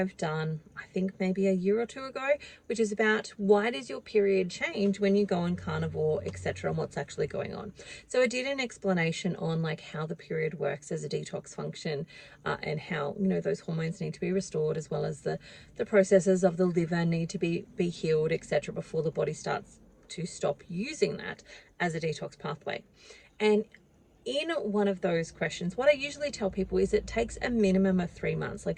done, I think maybe a year or two ago, which is about why does your period change when you go on carnivore, etc., and what's actually going on. So I did an explanation on like how the period works as a detox function and how, you know, those hormones need to be restored, as well as the processes of the liver need to be healed, etc., before the body starts to stop using that as a detox pathway. And in one of those questions, what I usually tell people is it takes a minimum of 3 months.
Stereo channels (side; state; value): both; identical; correlation 1.00